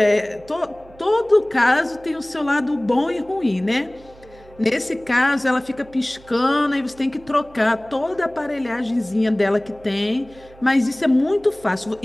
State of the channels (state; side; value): noise; right; hum, 24 dB below the sound